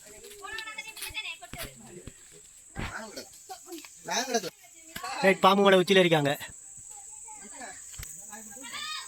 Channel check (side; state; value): both; identical; correlation 1.00